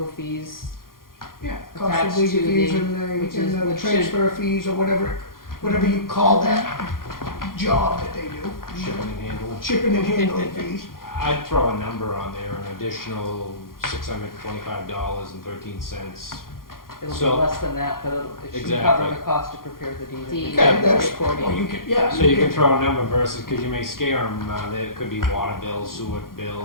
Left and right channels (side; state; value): right; late; 0.91 ms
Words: fees. Yeah, cost Attached of legal to fees the- and which the should- transfer fees or whatever you call that job that they do. shipping and handling. Shipping and handling fees. I'd throw a number on there, an additional $625.13. It'll be So- less than that, but it should Exactly. cover the cost to prepare the deed. Deed. Okay, that's, recording. well, you could, yeah. So you can throw a number versus, because you may scare them, there could be water bills, sewer